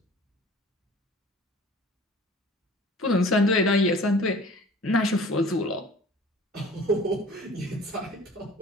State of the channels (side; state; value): both; normal; correlation 0.46